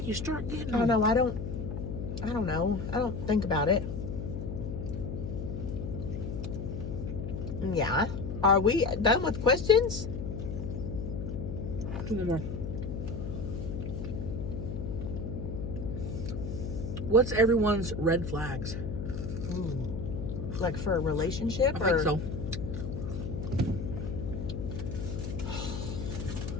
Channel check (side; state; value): left; noise; hum, 5 dB below the sound